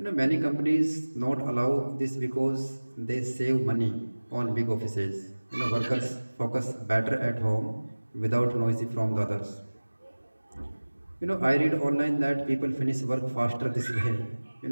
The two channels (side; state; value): both; inverted; correlation -1.00